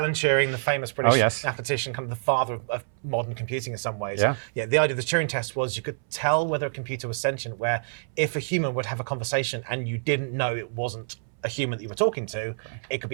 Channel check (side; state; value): left; silent; 60 dB below the other